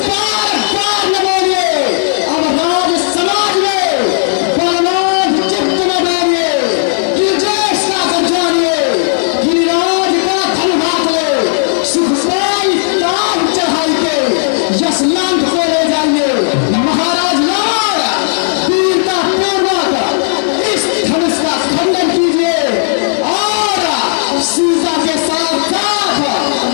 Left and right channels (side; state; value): right; silent; digital silence